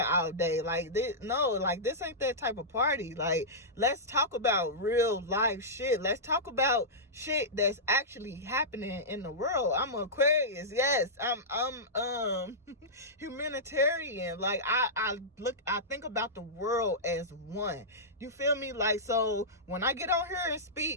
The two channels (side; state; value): both; normal; correlation -0.14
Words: all day. Like, this ain't that type of party. Like, let's talk about real life shit. Let's talk about shit that's actually happening in the world. I'm an Aquarius, yes. I'm humanitarian. Like, I think about the world as one, you feel me? Like, so when I get on here and